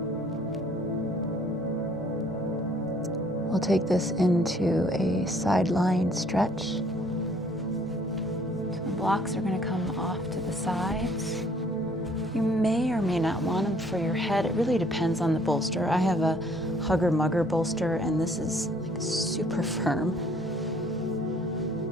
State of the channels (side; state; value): both; normal; correlation 0.60